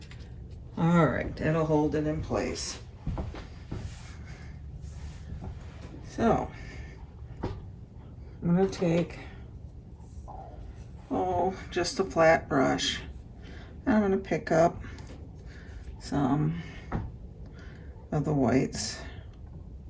All right, that'll hold it in place. So, I'm gonna take, just a flat brush. I'm gonna pick up some of the whites.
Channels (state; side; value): identical; both; correlation 1.00